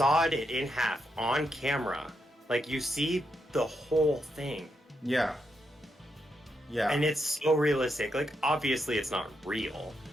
it in half on camera. Like, you see the whole thing. Yeah. Yeah. And it's so realistic. Like, obviously it's not real.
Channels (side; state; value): both; normal; correlation 0.82